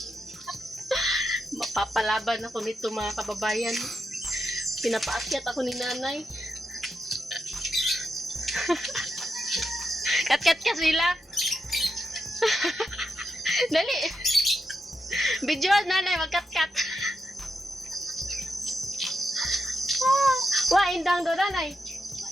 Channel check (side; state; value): both; normal; correlation 0.85